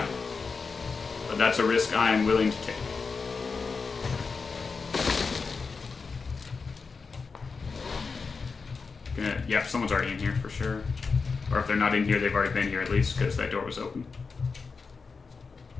but that's a risk I am willing to take. Yeah, someone's already in here for sure. Or if they're not in here, they've already been here at least because that door was open.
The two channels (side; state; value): right; quieter; 4.8 dB